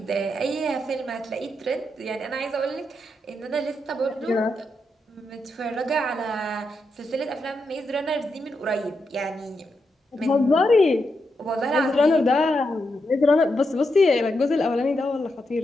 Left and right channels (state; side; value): normal; both; correlation 0.84